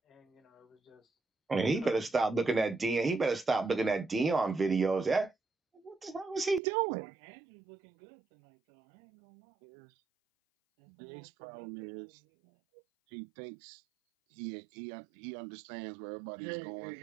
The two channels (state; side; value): drops out; left; at 6.6 s